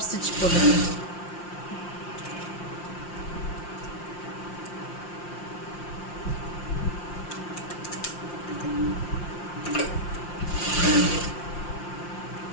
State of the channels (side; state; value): right; late; 5.7 ms